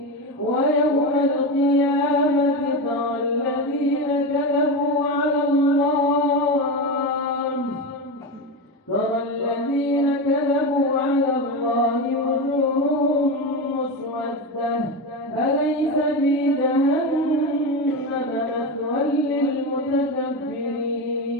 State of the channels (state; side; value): normal; both; correlation 0.18